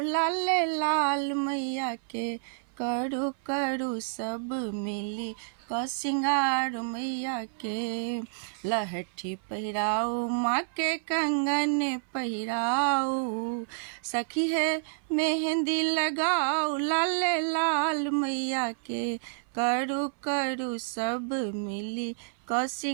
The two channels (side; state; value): left; silent; 58 dB below the other